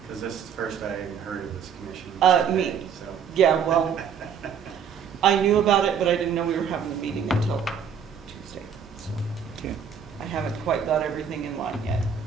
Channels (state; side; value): quieter; left; 7.3 dB